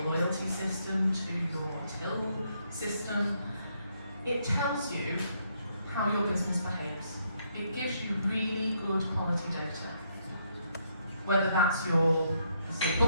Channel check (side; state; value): both; inverted; correlation -0.74